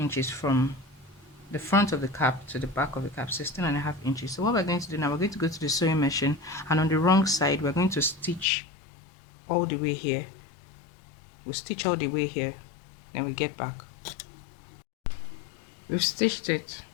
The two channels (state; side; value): drops out; right; at 8.5 s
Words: from the front of the cap to the back of the cap, 16 and a half inches. So what we're going to do now, we're going to go to the sewing machine, and on the wrong side we're going to stitch all the way here. We'll stitch all the way here, then we get back. We've stitched it.